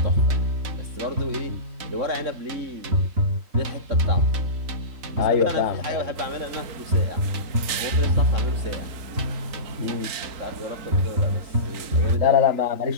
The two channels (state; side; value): late; left; 3.9 ms